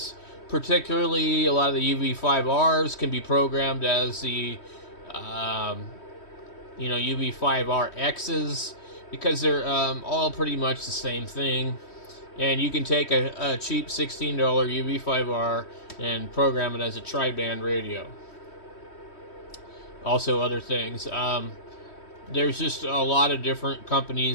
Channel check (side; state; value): right; late; 3.1 ms